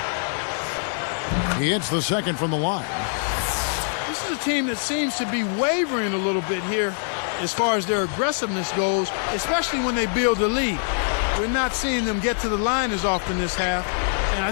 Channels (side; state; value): right; silent; digital silence